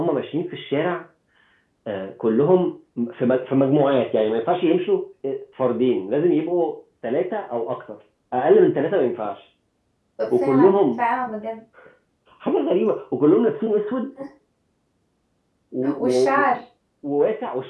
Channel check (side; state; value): both; identical; correlation 1.00